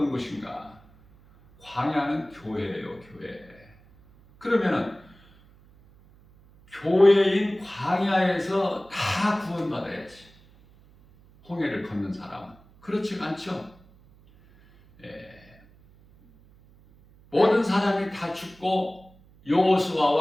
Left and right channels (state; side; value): noise; right; hum, 27 dB below the sound